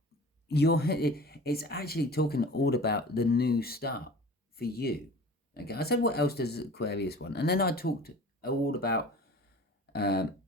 it's actually talking all about the new start for you. Okay, I said what else does Aquarius want, and then I talked all about the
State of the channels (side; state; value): both; normal; correlation 0.41